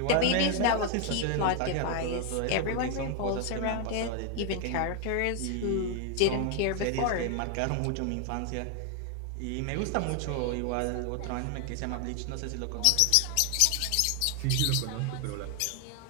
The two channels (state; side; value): different; both; correlation 0.00